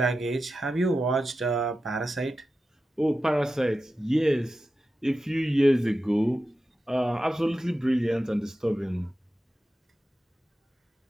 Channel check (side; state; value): both; normal; correlation 0.92